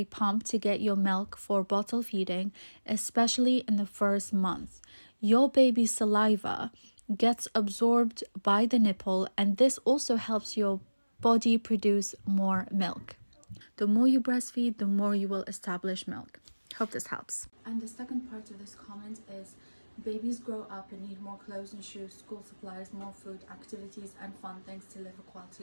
pump to get your milk for bottle feeding, especially in the first month. Your baby's saliva gets absorbed by the nipple and this also helps your body produce more milk. The more you breastfeed, the more you will establish milk. Hope this helps. And the second part of this comment is babies grow up and need more clothes and shoes, school supplies, more food, activities and fun things to live a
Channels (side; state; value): both; inverted; correlation -1.00